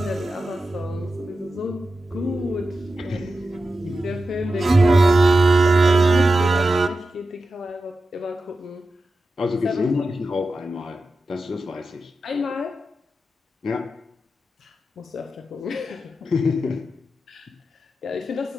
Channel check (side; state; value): both; normal; correlation 0.91